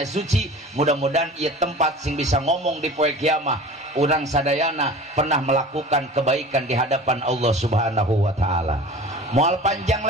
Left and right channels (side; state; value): both; normal; correlation 0.40